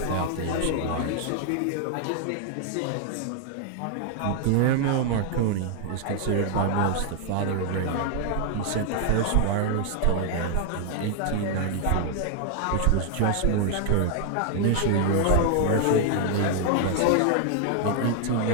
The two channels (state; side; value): different; both; correlation 0.00